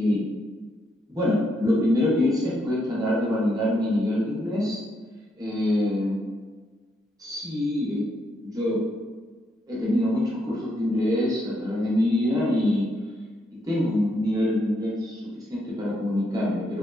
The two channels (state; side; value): normal; both; correlation 0.77